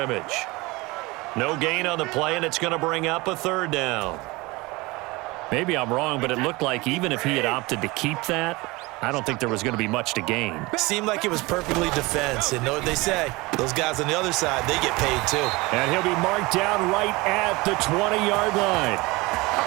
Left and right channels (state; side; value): quieter; left; 23.0 dB